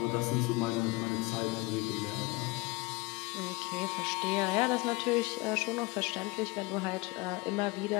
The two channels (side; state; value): right; quieter; 24.1 dB